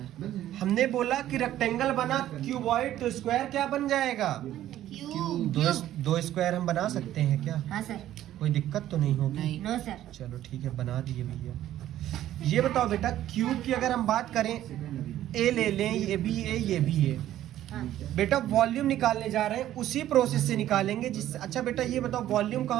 हमने बोला कि रेक्टेंगल बना क्यूबॉइड, तो स्क्वायर क्या बन जाएगा, दो स्क्वायर हम बना सकते हैं क्या। हाँ सर। कोई दिक्कत तो नहीं होगी। No sir. चलो ठीक है, बना दिए भैया। ये बताओ बेटा, क्यूब की अगर हम बात करें, ए ले लें, ये भी ए ये भी ए। बेटा वॉल्यूम निकालने जा रहे हैं, उसी प्रोसेस से निकालेंगे जिससे। अच्छा बेटा ये बताओ, वॉल्यूम का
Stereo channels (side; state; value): left; quieter; 12.8 dB